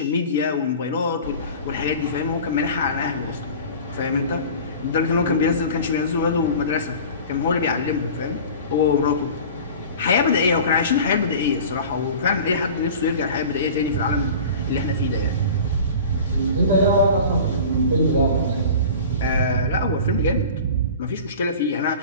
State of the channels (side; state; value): both; inverted; correlation -0.39